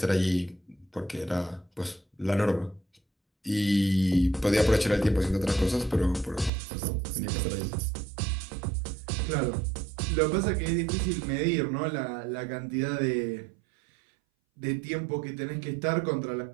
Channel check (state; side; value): drops out; left; at 6.5 s